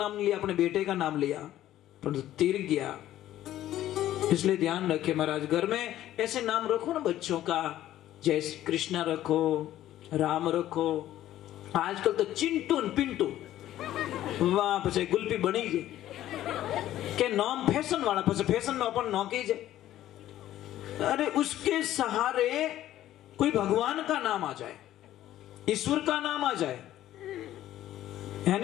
नहीं लिया, अपने बेटे का नाम लिया, पर तीर गया। इसलिए ध्यान रखे महाराज, घर में ऐसे नाम रखो ना बच्चों का, जैसे कृष्णा रखो, राम रखो। आजकल तो चिंटू पिंटू वहां पे गुल्फी बनी जे के नाम फैशन वाला, फैशन में अपन नौकी जे। अरे उसके सहारे कोई भगवान का नाम आ जाए, ईश्वर का नाम आ जाए,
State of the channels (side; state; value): right; quieter; 13.2 dB